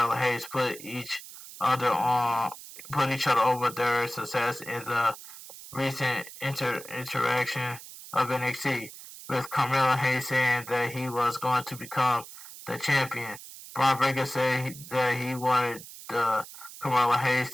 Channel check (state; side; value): noise; right; hiss, 15 dB below the sound